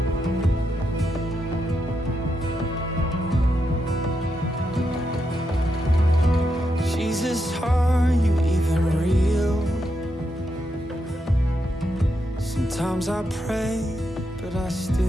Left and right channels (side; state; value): both; normal; correlation 0.83